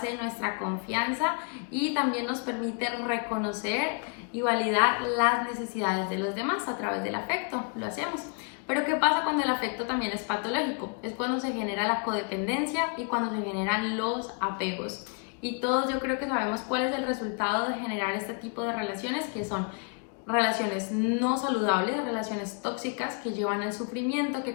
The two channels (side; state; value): right; quieter; 39.2 dB